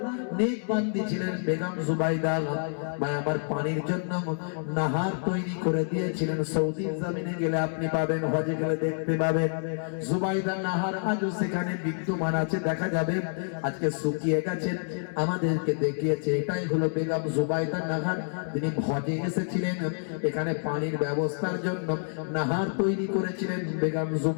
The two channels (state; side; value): silent; right; 59 dB below the other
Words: নেক বান্দি ছিলেন বেগম জুবাইদা। ভাই আমার, পানির জন্য নাহার তৈরি করে দিয়েছিলেন। সৌদি জমিনে গেলে আপনি পাবেন, হজে গেলে দেখতে পাবেন জুবাইদা নাহার আজও সেখানে বিদ্যমান আছে, দেখা যাবে। আজকে শুকিয়ে গেছে, আমাদেরকে দেখিয়েছে। এটাই হলো বেগম জুবাইদা নাহার। তিনি হজে এসেছিলেন, এখানে পানির ব্যবস্থার জন্য নাহার তৈরি করেছিলেন বেগম